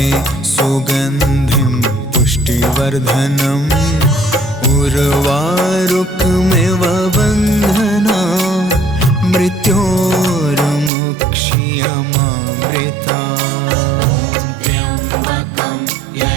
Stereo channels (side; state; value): left; drops out; at 10.9 s